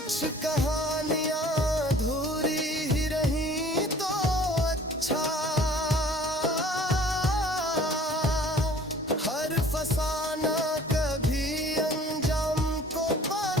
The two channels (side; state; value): both; normal; correlation 0.50